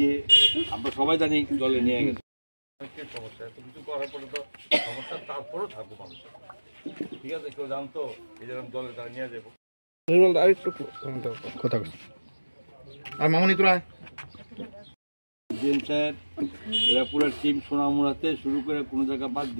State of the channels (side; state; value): both; inverted; correlation -1.00